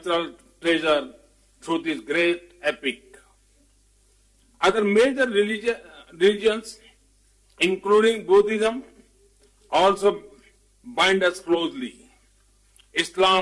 treasure through this great epic. Other major religions, including Buddhism, also bind us closely.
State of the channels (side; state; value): both; identical; correlation 1.00